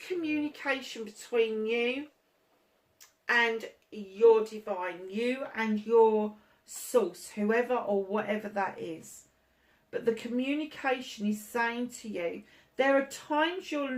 communication between you and your divine, you and your source, whoever or whatever that is. But the communication is saying to you, there are times you're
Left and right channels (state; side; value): identical; both; correlation 1.00